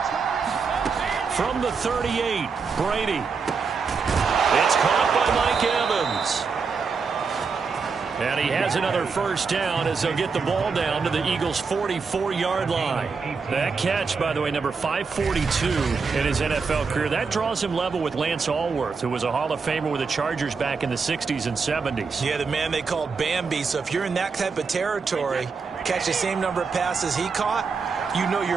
From the 38, Brady. It's caught by Mike Evans. And he has another first down as they'll get the ball down to the Eagles' 44-yard line. That catch, by the way, number 542 in his NFL career. That draws him level with Lance Allworth, who was a Hall of Famer with the Chargers back in the 60s and 70s. Yeah, the man they called Bambi. So if you're in that type of territory, catch the same number of passes he caught, you know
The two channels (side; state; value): left; quieter; 5.1 dB